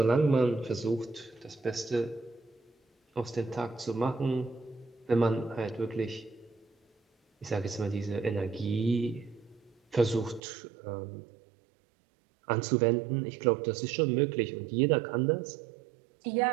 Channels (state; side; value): drops out; left; at 10.4 s